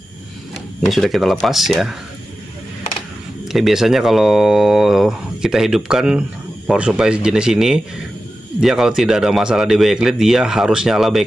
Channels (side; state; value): both; normal; correlation 0.93